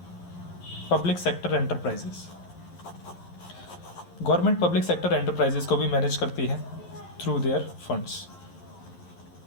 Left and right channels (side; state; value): right; late; 11 ms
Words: public sector enterprises. Government public sector enterprises को भी मैनेज करती है थ्रू देयर फंड्स।